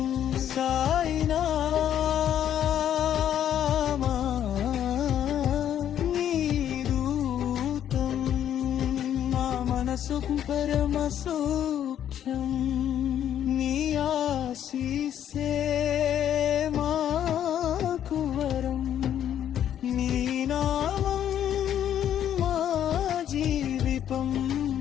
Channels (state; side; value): quieter; right; 10.2 dB